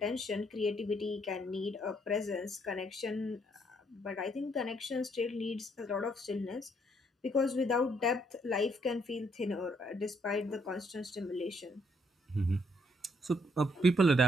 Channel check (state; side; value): normal; both; correlation 0.71